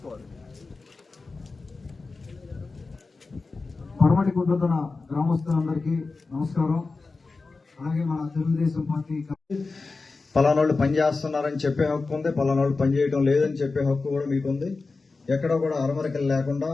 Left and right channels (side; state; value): right; quieter; 3.9 dB